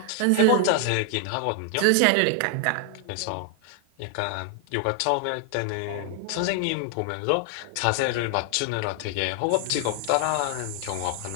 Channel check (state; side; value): different; both; correlation 0.00